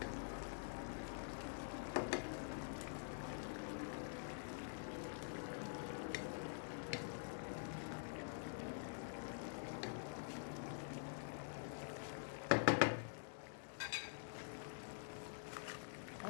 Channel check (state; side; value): silent; right; digital silence